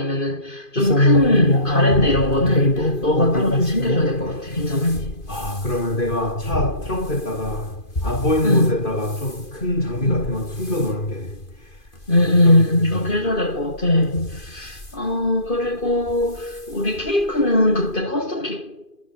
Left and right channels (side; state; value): right; late; 2.5 ms